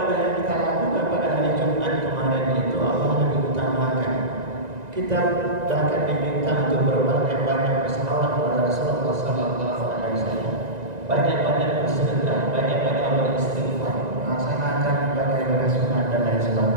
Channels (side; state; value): left; late; 1.9 ms